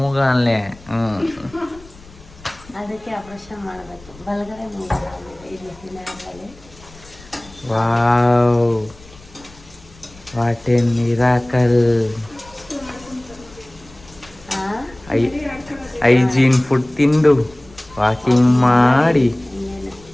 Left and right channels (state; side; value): noise; left; rumble, 23 dB below the sound